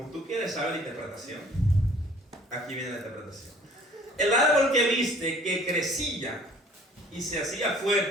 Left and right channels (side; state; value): both; normal; correlation 0.54